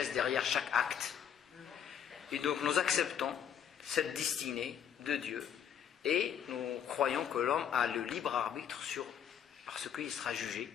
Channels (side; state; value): right; quieter; 8.7 dB